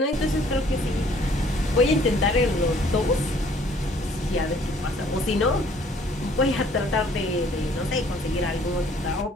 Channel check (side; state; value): both; normal; correlation 0.59